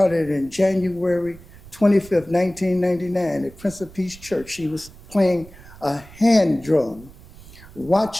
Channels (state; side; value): noise; right; rumble, 20 dB below the sound